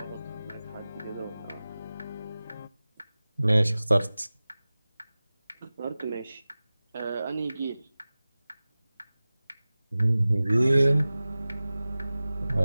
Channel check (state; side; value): inverted; both; correlation -0.97